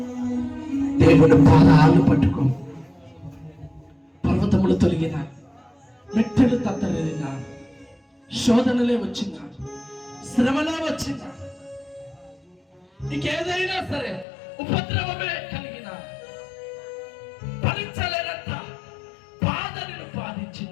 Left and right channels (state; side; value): drops out; right; at 14.2 s